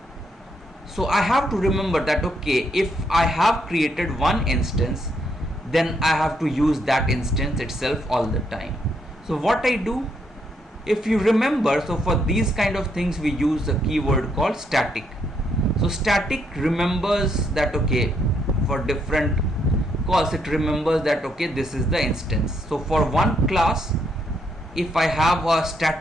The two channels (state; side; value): normal; both; correlation 0.75